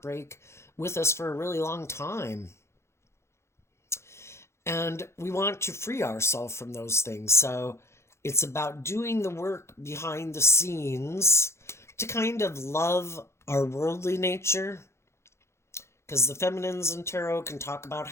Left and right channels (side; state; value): right; late; 0.13 ms